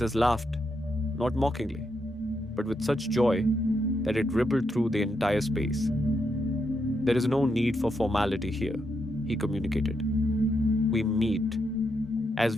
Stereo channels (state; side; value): normal; both; correlation 0.81